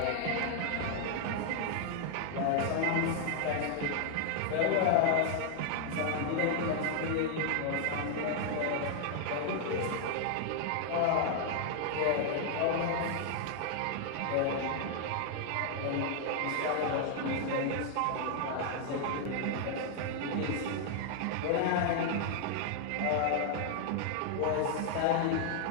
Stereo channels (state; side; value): different; both; correlation 0.00